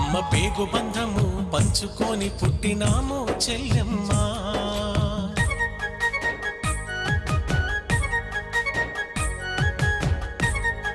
పేగు బంధము పంచుకొని పుట్టినాము చెల్లెమ్మ.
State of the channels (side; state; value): both; identical; correlation 1.00